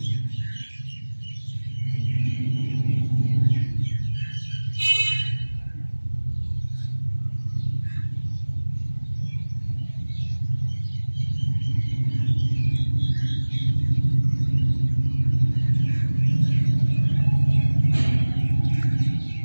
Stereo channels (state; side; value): inverted; both; correlation -1.00